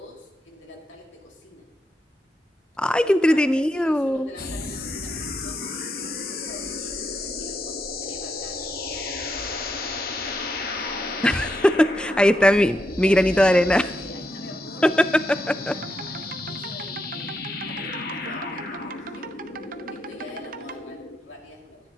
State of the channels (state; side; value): normal; both; correlation 0.82